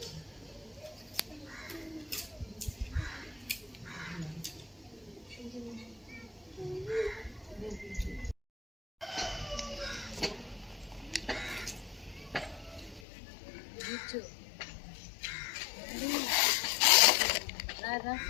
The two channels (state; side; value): drops out; right; at 13.0 s